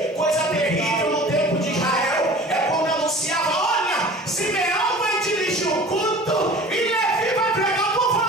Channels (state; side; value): normal; both; correlation 0.43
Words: coisa terrível no tempo de Israel é quando anunciava: olha, Simeão vai dirigir o culto e Levi vai pregar o povo.